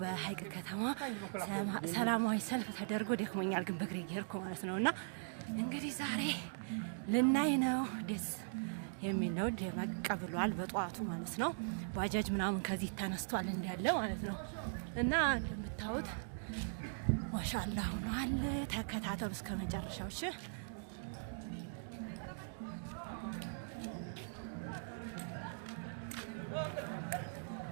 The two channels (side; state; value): left; silent; digital silence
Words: በሀይቅ ከተማ ሰላማዊ ሰልፍ ተደርጎ ደክሞኛል፣ ግን በእግሬ እየሄድኩ ማለት ነውና እንግዲህ ዛሬ ልናይ ነው። ደስ የሚል ነው። ደመቅ ብሏል በጧቱ ማለት ነው። ባጃጅ ምናምን ከዚህ ተነስቷል እንዳለ ማለት ነው እና እንደምታዩት ማሻአላህ ሆኗል። ተከታተሉ እስከ መጨረሻው።